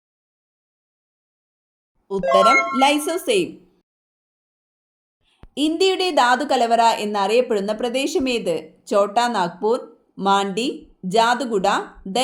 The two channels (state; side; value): identical; both; correlation 1.00